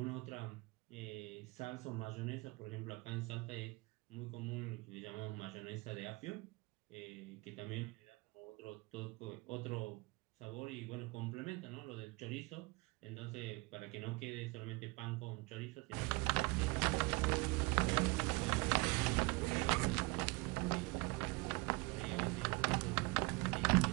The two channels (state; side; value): quieter; left; 25.8 dB